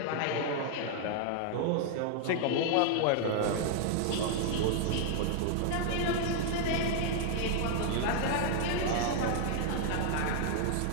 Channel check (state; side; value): different; both; correlation 0.00